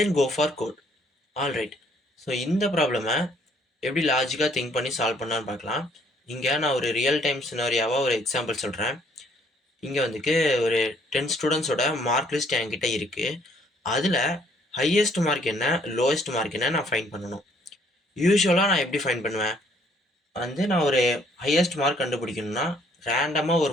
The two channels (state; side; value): normal; both; correlation 0.64